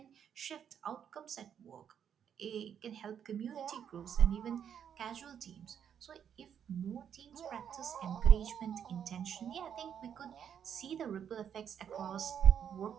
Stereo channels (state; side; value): quieter; left; 8.5 dB